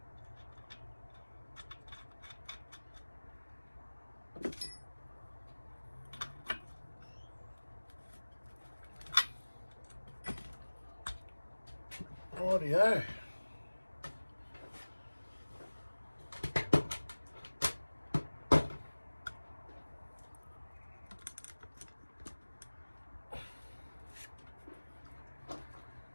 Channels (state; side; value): inverted; both; correlation -1.00